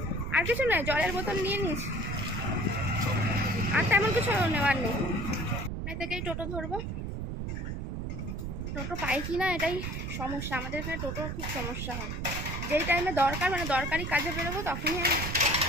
আর কিছু নয়, জলের বোতল নিয়ে নিয়েছি, আর তেমন কিছু নেওয়ার নেই। এখান থেকেই টোটো ধরবো। টোটো পাই কি না এটাই সমস্যা, আমাদের এখানে টোটোর খুব সমস্যা হয়। যেই টাইমে দরকার, মানে দরকারি কাজে বেরোবো, তখনই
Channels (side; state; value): right; noise; rumble, 4 dB below the sound